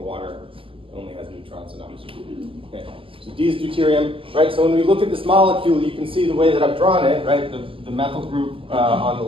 only has neutrons and oxygen. Okay, so D is deuterium, right? So when we look at this molecule, you can see the way that I've drawn it, right? The methyl group on the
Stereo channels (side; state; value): left; late; 0.26 ms